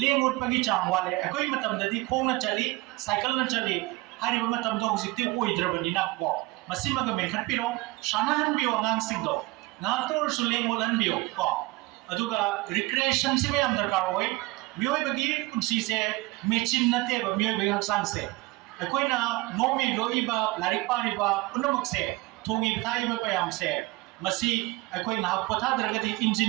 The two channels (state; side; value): quieter; left; 22.1 dB